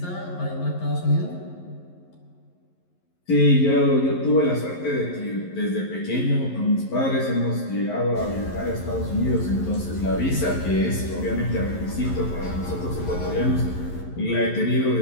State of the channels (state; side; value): late; right; 11 ms